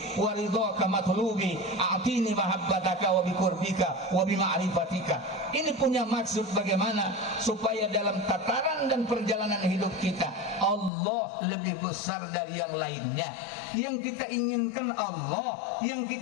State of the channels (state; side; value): drops out; right; at 10.9 s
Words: wa ridhaka matlubi a'tini mahabbataka wa biqurbika wa bima'rifatika. Ini punya maksud bagaimana supaya dalam tataran dan perjalanan hidup kita Allah lebih besar dari yang lainnya. Yang kita inginkan Allah, yang